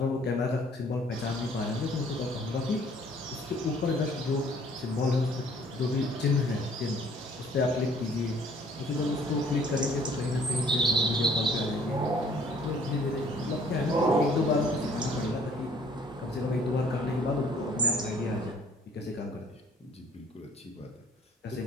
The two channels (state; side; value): normal; both; correlation 0.58